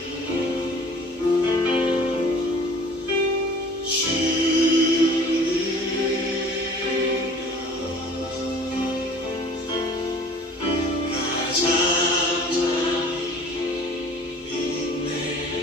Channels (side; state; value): both; normal; correlation 0.47